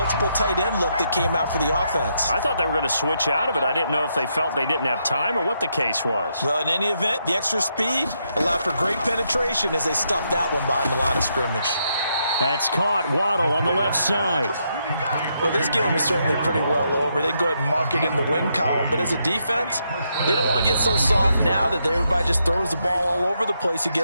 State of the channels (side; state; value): both; inverted; correlation -0.79